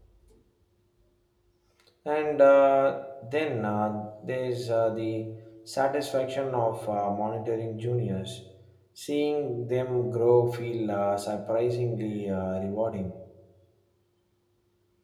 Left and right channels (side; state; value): both; identical; correlation 1.00